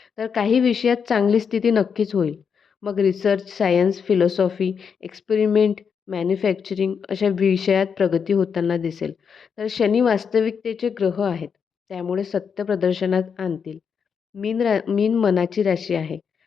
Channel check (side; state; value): right; quieter; 6.6 dB